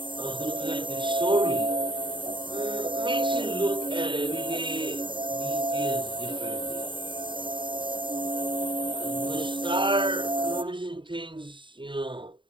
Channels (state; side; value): late; left; 0.23 ms